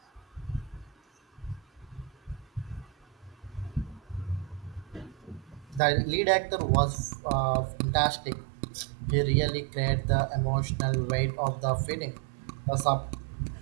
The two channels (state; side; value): drops out; left; at 5.8 s